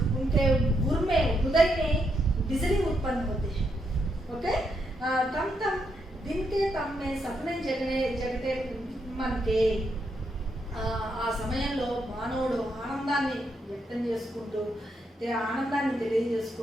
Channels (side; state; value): both; normal; correlation 0.79